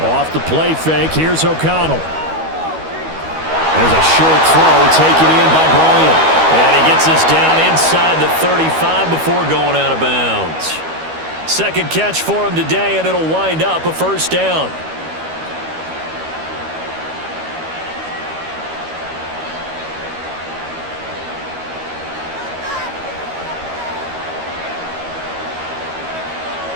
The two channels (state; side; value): late; left; 13 ms